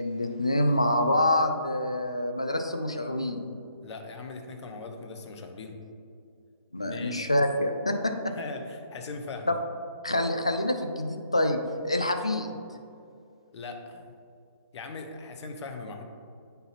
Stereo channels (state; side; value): inverted; both; correlation -0.73